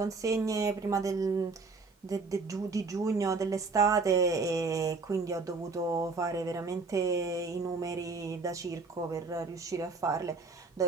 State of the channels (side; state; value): left; quieter; 4.2 dB